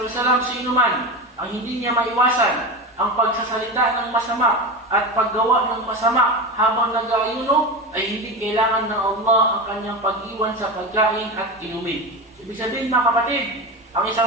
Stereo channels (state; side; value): normal; both; correlation 0.23